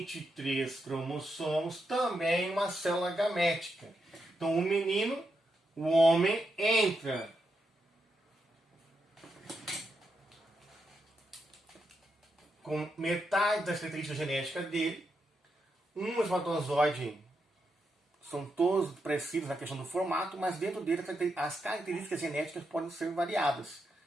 cromossomos, também uma célula gamética. Então o menino, o homem, entra com metade das características genéticas dele. Um espermatozoide, são todos parecidos na questão do formato, mas dentro dele as características genéticas podem ser variadas,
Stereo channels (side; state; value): both; normal; correlation 0.84